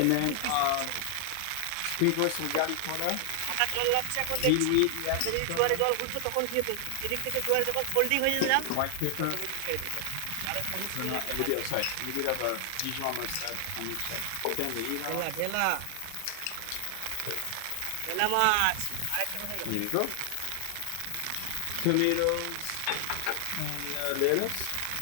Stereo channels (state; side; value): different; both; correlation 0.00